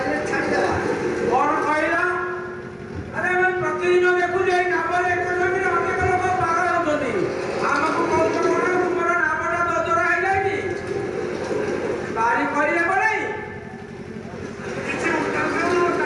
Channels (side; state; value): both; identical; correlation 1.00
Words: ଛାଡ଼ିଦେବା। कौन कहला? अरे मैं प्रतिदिन देखु जे नाम एक जमीन अनेक लोग पागल होतनी। ଆମକୁ କହୁଛ କଣ ତୁମର ନାମଟା ଦଦରା ହେଇଯାଇଛି? ବାରି କରିଲେ ପଡ଼େ କିଛି ଉତ୍ତର